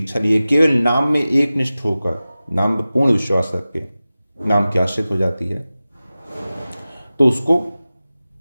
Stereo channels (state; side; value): inverted; both; correlation -0.96